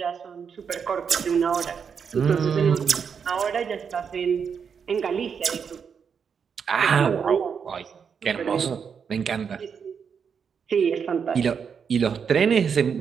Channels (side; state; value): left; quieter; 6.7 dB